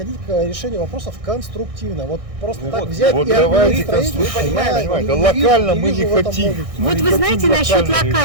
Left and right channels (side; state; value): left; late; 1.6 ms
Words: к решению вопросов конструктивно. Вот просто Ну так вот, взять вот и давайте отменить строительство, понимаете, я не локально вижу- мы не не вижу в этом хотим. логики. Вот не вы хотим знаете насчет локально решать.